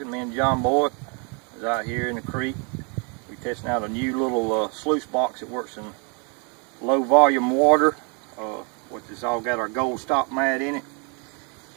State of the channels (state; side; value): quieter; left; 35.3 dB